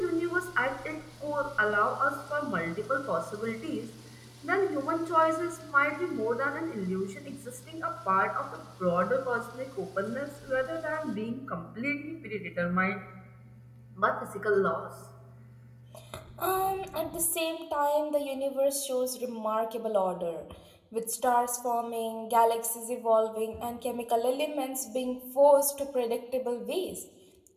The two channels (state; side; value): identical; both; correlation 1.00